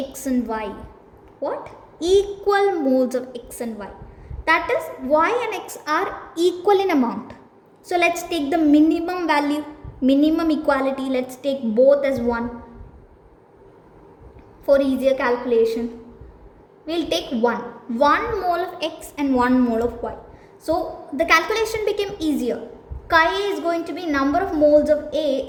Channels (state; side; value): identical; both; correlation 1.00